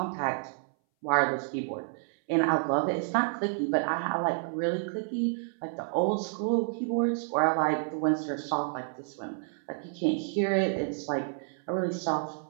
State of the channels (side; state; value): left; silent; 58 dB below the other